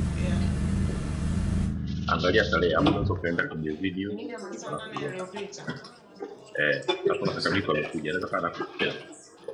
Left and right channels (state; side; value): identical; both; correlation 1.00